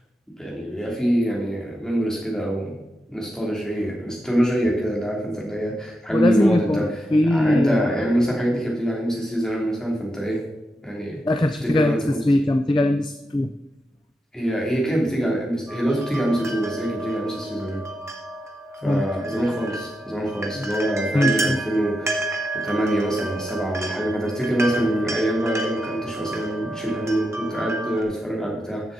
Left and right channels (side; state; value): both; normal; correlation 0.86